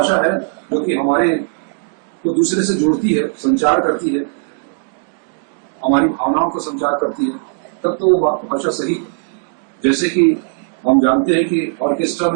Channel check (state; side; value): silent; left; 68 dB below the other